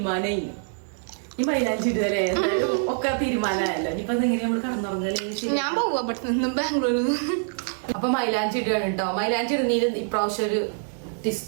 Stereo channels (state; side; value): silent; left; 60 dB below the other